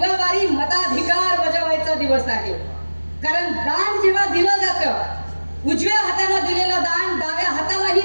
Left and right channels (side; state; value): both; inverted; correlation -1.00